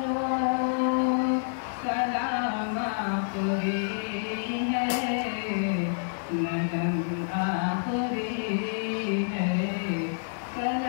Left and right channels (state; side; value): silent; right; digital silence